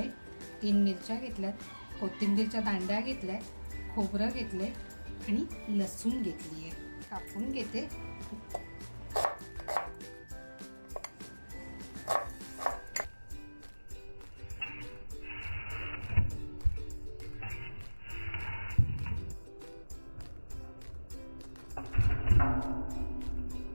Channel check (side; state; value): both; inverted; correlation -1.00